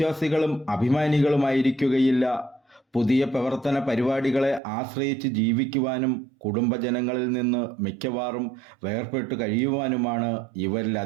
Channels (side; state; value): left; drops out; at 4.6 s